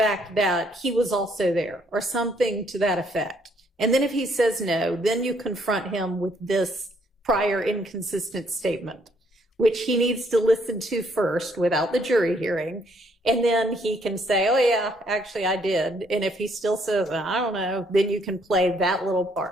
that he was also there or something to that effect? And then if he says no, then you confront him with this prior inconsistent statement, which he needs to listen to first without the jury hearing. And then he can say, oh yeah, actually I did. And if he still says, I don't know, then you can play that little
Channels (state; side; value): normal; both; correlation 0.68